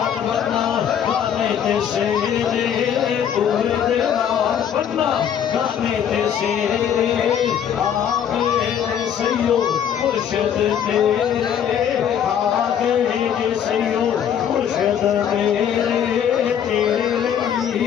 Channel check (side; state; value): right; quieter; 8.9 dB